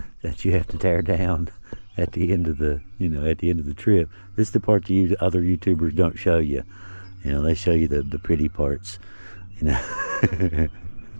that you have to tear down at the end of the trip. This is the part that other YouTubers don't show you. They show you the pretty parts.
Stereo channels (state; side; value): inverted; both; correlation -1.00